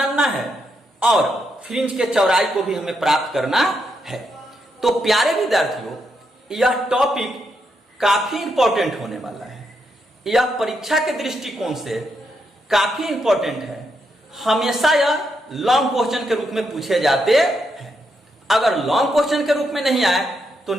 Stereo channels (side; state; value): both; normal; correlation 0.80